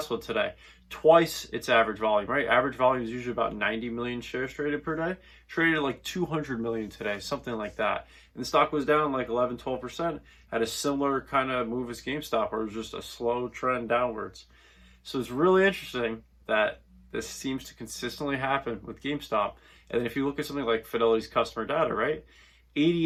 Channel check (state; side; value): identical; both; correlation 1.00